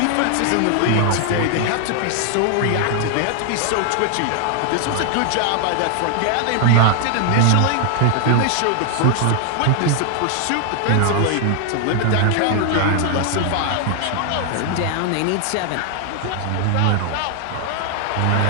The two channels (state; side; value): different; both; correlation 0.00